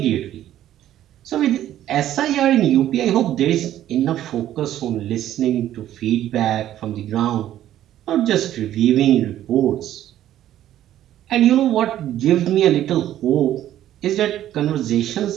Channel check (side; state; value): left; quieter; 12.3 dB